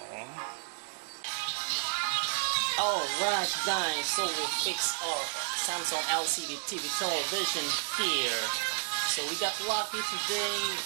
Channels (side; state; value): left; silent; digital silence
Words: Alright guys, so we fixed our Samsung LCD TV television here. So we got lucky today,